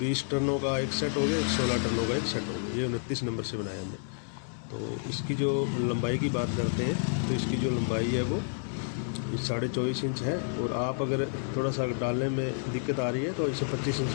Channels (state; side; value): silent; right; digital silence